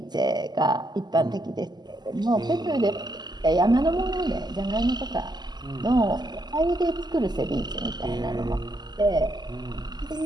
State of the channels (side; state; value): left; late; 0.21 ms